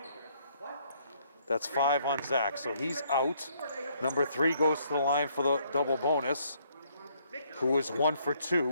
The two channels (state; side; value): inverted; both; correlation -0.68